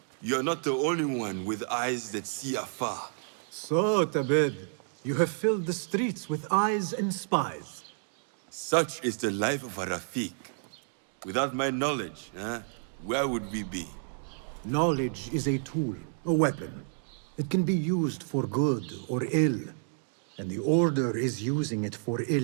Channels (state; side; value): silent; left; digital silence